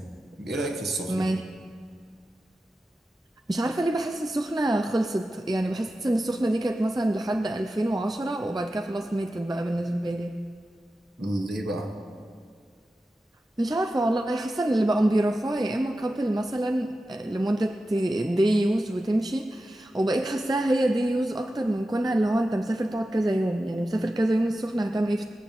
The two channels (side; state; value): both; normal; correlation 0.92